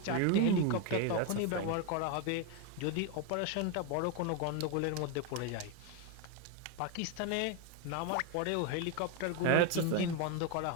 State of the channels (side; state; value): both; different; correlation 0.02